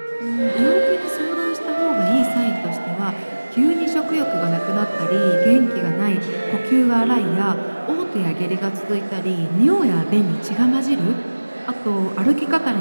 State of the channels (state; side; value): inverted; both; correlation -1.00